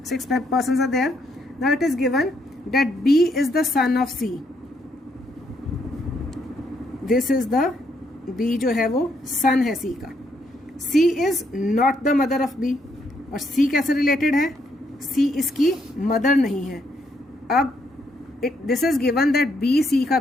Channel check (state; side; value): normal; both; correlation 0.74